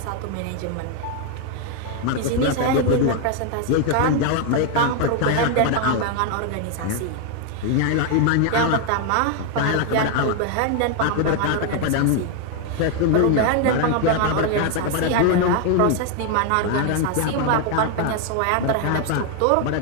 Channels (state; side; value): different; both; correlation 0.01